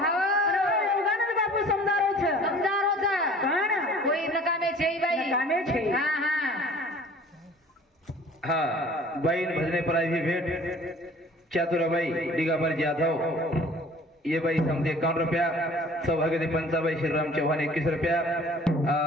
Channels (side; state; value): both; normal; correlation 0.49